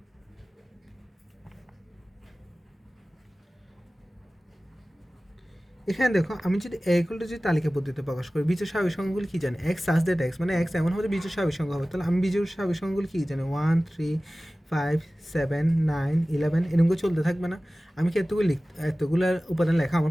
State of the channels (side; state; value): both; normal; correlation 0.97